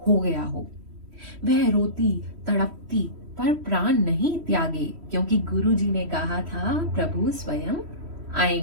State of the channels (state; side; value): late; left; 3.1 ms